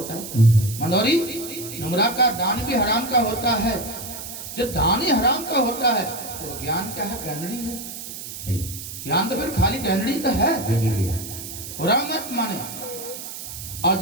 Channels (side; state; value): right; noise; hiss, 10 dB below the sound